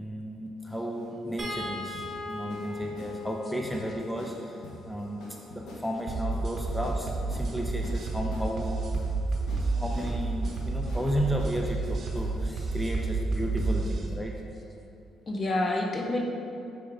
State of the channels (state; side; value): normal; both; correlation 0.83